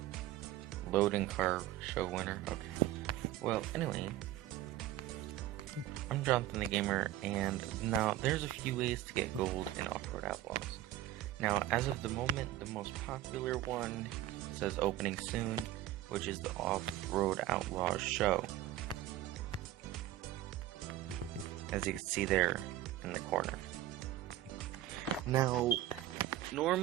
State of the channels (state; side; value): quieter; left; 14.0 dB